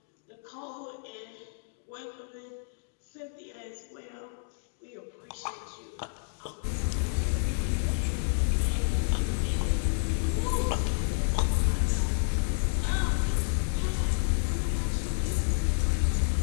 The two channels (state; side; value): silent; right; digital silence